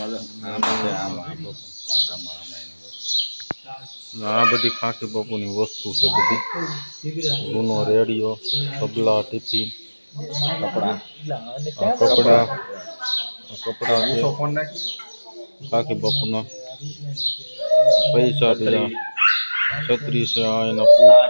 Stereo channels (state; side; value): inverted; both; correlation -1.00